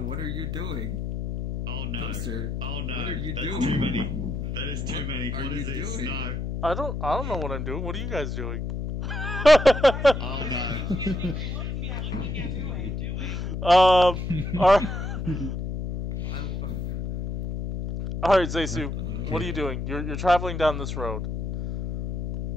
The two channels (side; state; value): left; noise; hum, 4 dB below the sound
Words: are you doing? Oh no. Toaster, Oh no. what are you That's doing? too many. That is too many. What What are is you this? doing? No. I don't know what I'm doing. What are you guys doing? Oh no. Alright, Zeisu, what are you doing? You're traveling down this road.